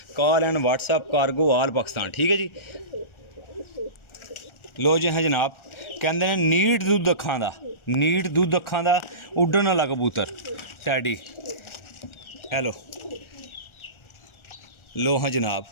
कॉल एंड व्हाट्सअप कार्गो आल पाकिस्तान। ठीक है जी। लो जी हाँ जनाब, कहते हैं नीट दुद्ध अखां दा, नीट दुद्ध अखां दा उड्डन वाला कबूतर टैडी। हेलो, लो हाँ जनाब,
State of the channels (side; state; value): right; late; 1.4 ms